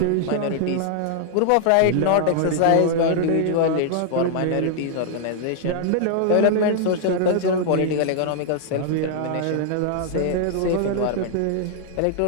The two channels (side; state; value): both; different; correlation -0.01